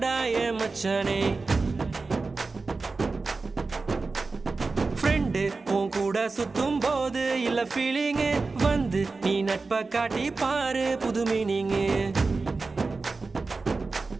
மச்சானே. ஃப்ரெண்டு உன் கூட சுத்தும் போது இல்ல ஃபீலிங்கு, வந்து நீ நட்பை காட்டி பாரு புது மீனிங்கு.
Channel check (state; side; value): quieter; left; 3.9 dB